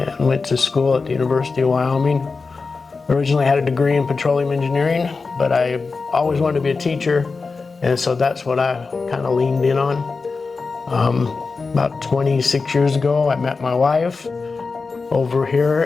went to school at the University of Wyoming. Originally had a degree in petroleum engineering, but I always wanted to be a teacher, and so that's what I kind of leaned in on. About 26 years ago, I met my wife over here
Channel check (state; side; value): quieter; right; 4.3 dB